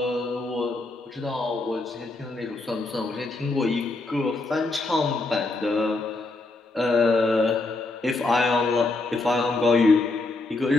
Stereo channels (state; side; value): quieter; right; 3.2 dB